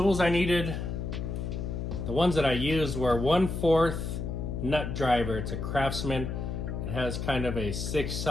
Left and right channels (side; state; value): left; noise; hum, 4 dB below the sound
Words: I needed, the ones that I used were 1/4 nut driver. It's a Craftsman. It has kind of a